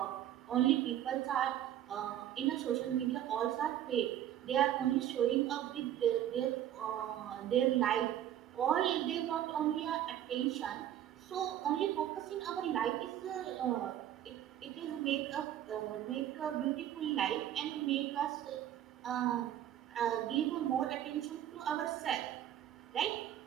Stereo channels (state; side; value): quieter; left; 11.5 dB